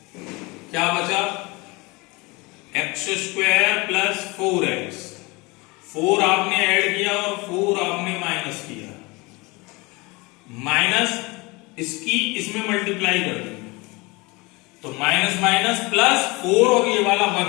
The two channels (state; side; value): quieter; right; 25.1 dB